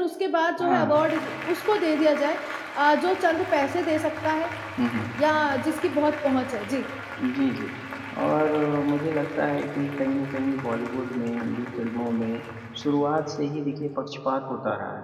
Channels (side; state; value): both; identical; correlation 1.00